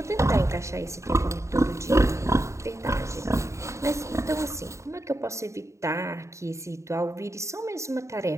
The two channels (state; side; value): late; left; 0.14 ms